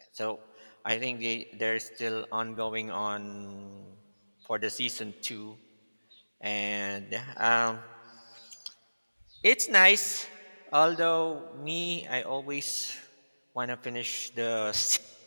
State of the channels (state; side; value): inverted; both; correlation -1.00